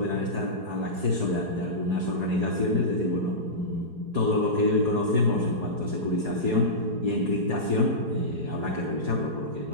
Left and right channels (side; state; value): left; late; 4.7 ms